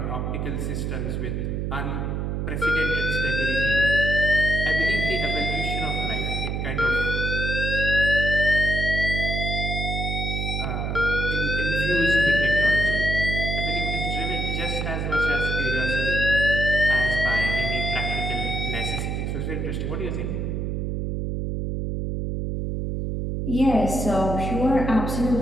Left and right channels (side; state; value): right; noise; hum, 1 dB below the sound